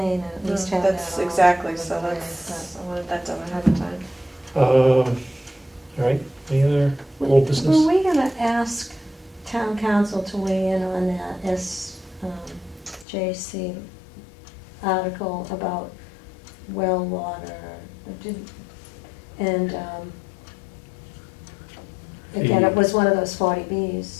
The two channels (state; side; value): drops out; right; at 13.1 s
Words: and at least have that That's all exactly, out of so the way, that's, I wanted that done ahead of time. All right, any other old but- business? Were we gonna ask town council to weigh in on that JC article about well water? And, again, it was one of those